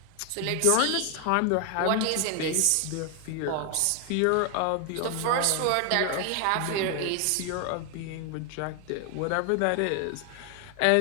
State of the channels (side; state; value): both; different; correlation 0.01